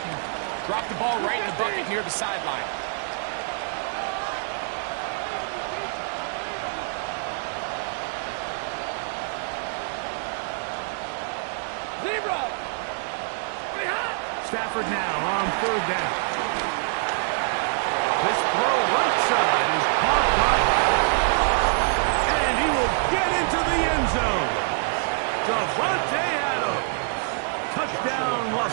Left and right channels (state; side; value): silent; left; 61 dB below the other